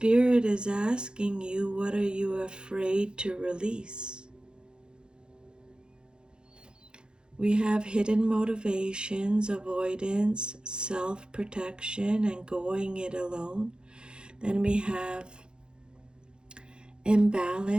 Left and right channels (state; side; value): late; left; 0.049 ms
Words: is asking you, what are you afraid to release? We have hidden motivations, avoidance, self-protection, and going it alone. Then we have